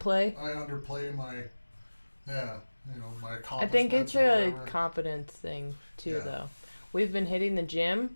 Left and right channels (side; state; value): both; inverted; correlation -1.00